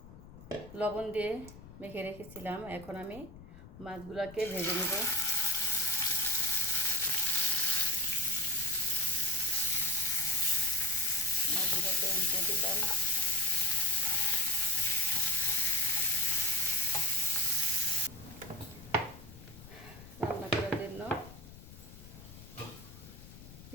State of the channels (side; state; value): left; noise; rumble, 18 dB below the sound